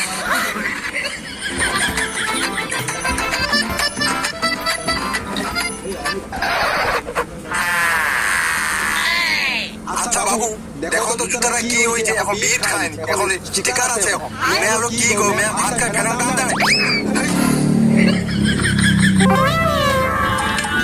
আচ্ছা বাবু, দেখো তো জুতারা কি হয়েছে, এখন বিট খায়নি, এখন স্টিকার আছে। মেয়ে হলো কি গো, মেয়ে ভাত খায় ফেরার দাম দেয়।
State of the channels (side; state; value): both; identical; correlation 1.00